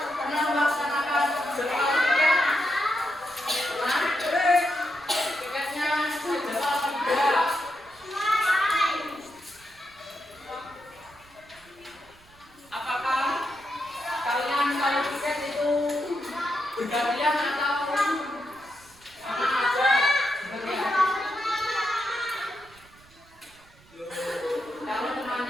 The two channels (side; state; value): right; noise; rumble, 27 dB below the sound